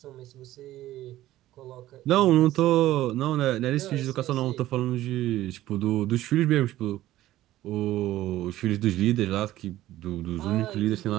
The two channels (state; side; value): quieter; left; 14.8 dB